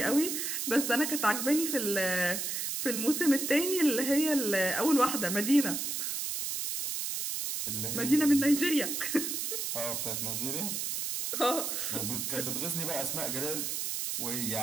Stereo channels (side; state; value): right; noise; hiss, 2 dB below the sound